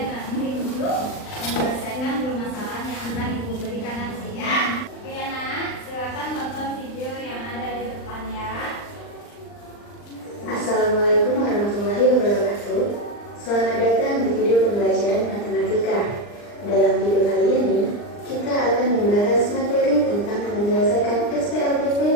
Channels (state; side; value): late; right; 39 ms